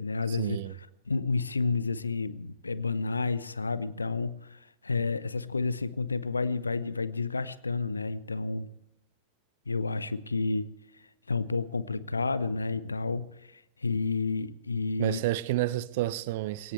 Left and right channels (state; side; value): inverted; both; correlation -0.76